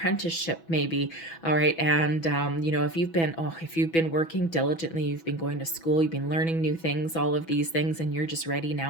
maybe, all right? And, you know, if you've been working diligently, you've been going to school, you've been learning new things, all of these things, and you're just ready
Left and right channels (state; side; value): late; right; 6.1 ms